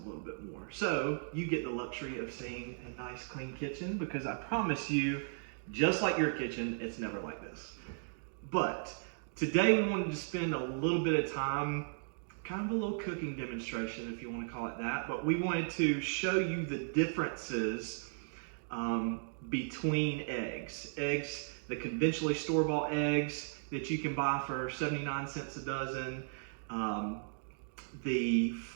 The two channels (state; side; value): silent; left; digital silence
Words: little bit more. So you get the luxury of seeing a nice clean kitchen, because I promise you, just like your kitchen, it's never like this. But today we wanted to spend a little bit of time, kind of a little cooking demonstration, if you want to call it that, but we wanted to show you the differences between eggs. Eggs, the conventionally store-bought eggs that you can buy for 79 cents a dozen, the